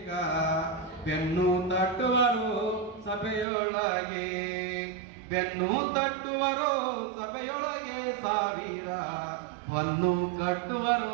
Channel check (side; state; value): left; drops out; at 3.5 s